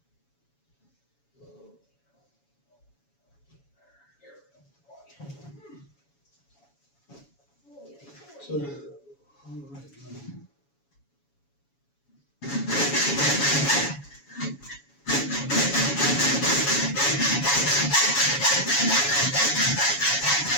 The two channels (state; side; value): late; right; 7.1 ms